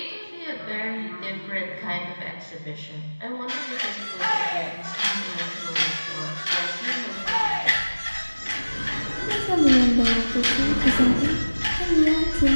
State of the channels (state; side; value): inverted; both; correlation -1.00